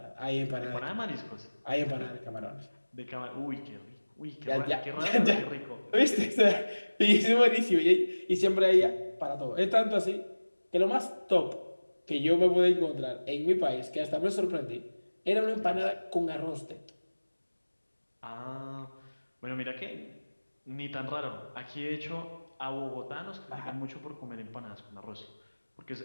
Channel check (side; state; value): both; inverted; correlation -1.00